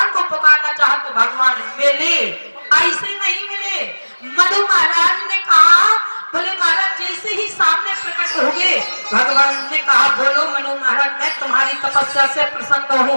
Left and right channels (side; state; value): both; inverted; correlation -1.00